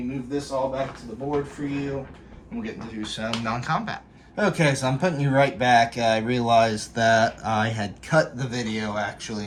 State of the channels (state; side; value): identical; both; correlation 1.00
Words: move this all back to the board for you, and we'll get to do some non-combat. Okay, so I'm putting you right back. I realized that I had cut the video actually